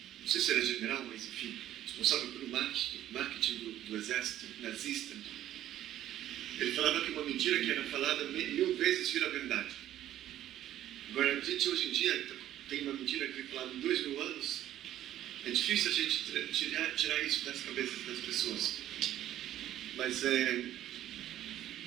não sei se era general, mas enfim, responsável pelo marketing do exército nazista. Ele falava que uma mentira que era falada 1000 vezes vira verdade. Agora, a gente hoje em dia tem uma mentira que foi falada em 2000 anos. É difícil a gente tirar isso das cabeças das pessoas. Mas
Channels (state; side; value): quieter; left; 12.5 dB